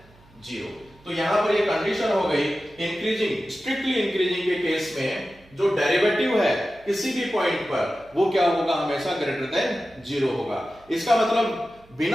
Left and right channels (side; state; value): right; noise; hum, 28 dB below the sound